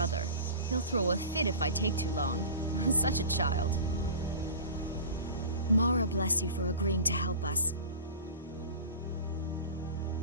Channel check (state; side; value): inverted; both; correlation -0.36